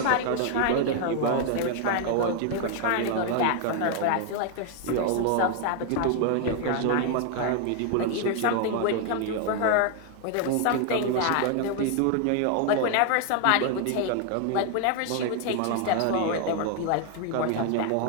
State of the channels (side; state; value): both; different; correlation 0.01